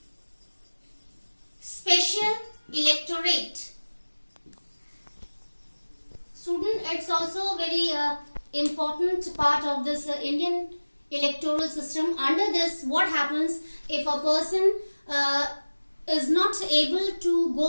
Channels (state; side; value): inverted; both; correlation -1.00